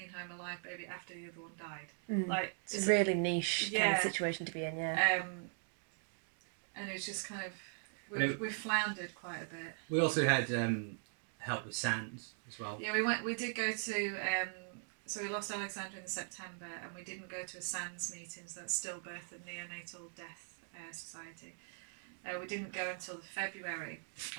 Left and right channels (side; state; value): left; silent; 51 dB below the other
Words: home a live baby after the other one died. Like it's a really niche kind of situation to be in. And it was just kind of we floundered quite a bit. We also had help with SANS as well. Yeah, we did go to so we lost Alexandra in September, and we didn't go to a SANS meeting, so that's Stillbirth and Neonatal Death Society. We didn't go until February,